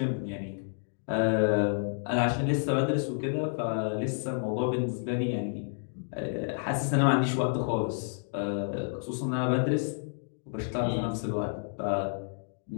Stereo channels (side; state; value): right; silent; digital silence